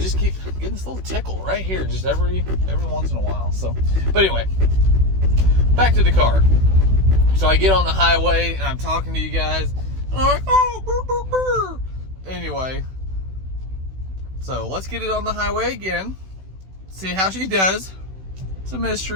keep getting this little tickle right here, just every once in a while. So, but anyway, back to the car. So I get on the highway and I'm talking to you guys. And I'm like, oh, brr, brr, brr. Anyway, so let's get it on the highway again. See how she does. It's a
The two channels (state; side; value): late; left; 16 ms